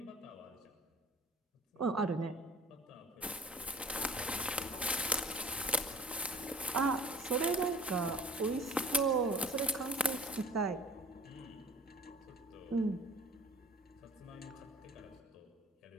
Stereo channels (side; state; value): both; normal; correlation 0.48